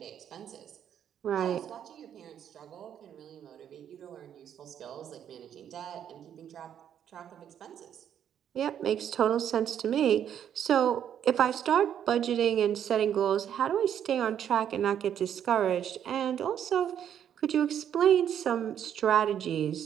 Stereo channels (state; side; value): quieter; left; 9.4 dB